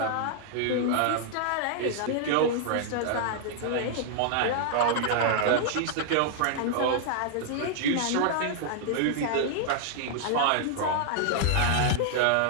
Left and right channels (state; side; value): different; both; correlation -0.01